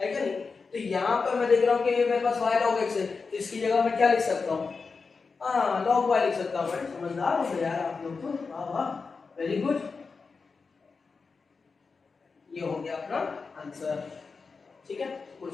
नहीं, तो यहाँ पर मैं देख रहा हूँ कि ये मेरे पास वाई लॉग एक्स है, तो इसकी जगह मैं क्या लिख सकता हूँ, हाँ लॉग वाई लिख सकता हूँ। समझदार हो यार आप लोग तो, वाह वाह वेरी गुड। ये हो गया अपना आंसर, ठीक है,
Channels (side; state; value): right; quieter; 4.7 dB